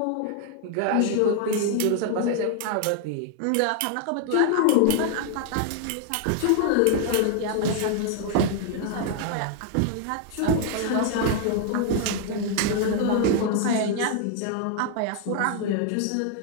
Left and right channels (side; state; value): both; different; correlation 0.00